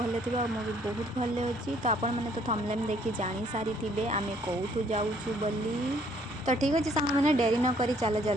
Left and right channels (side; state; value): both; normal; correlation 0.63